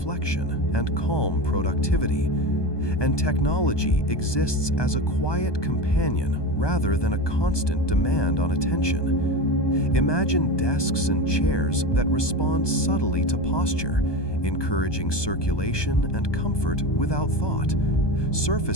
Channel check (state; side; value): late; right; 1.2 ms